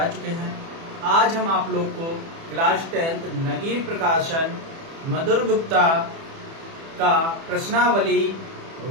चुके हैं। आज हम आप लोग को क्लास 10th नगीर प्रकाशन मधुर गुप्ता का प्रश्नावली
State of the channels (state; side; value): late; left; 30 ms